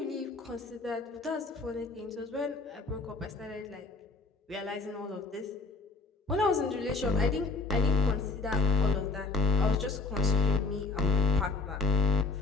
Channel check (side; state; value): right; quieter; 3.9 dB